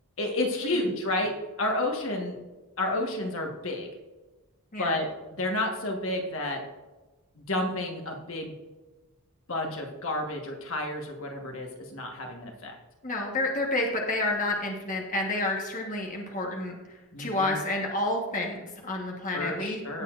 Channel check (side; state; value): both; normal; correlation 0.11